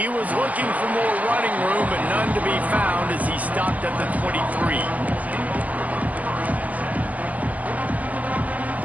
was looking for more running room, but none to be found as he stopped at the 23.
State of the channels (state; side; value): late; left; 0.077 ms